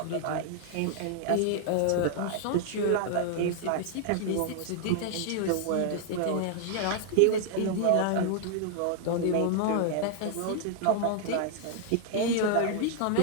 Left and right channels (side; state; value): both; different; correlation 0.00